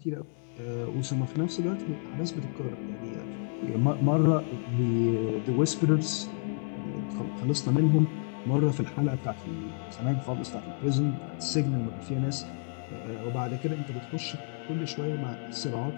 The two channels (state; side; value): silent; right; 58 dB below the other